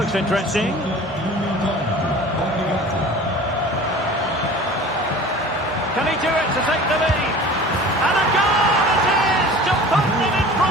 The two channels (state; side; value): normal; both; correlation 0.41